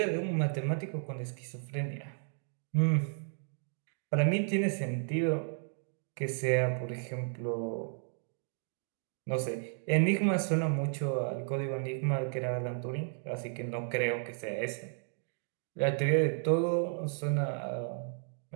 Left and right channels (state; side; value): silent; left; digital silence